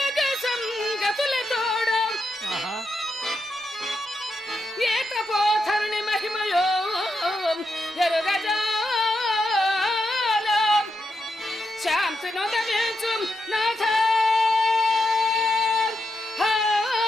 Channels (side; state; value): both; normal; correlation 0.84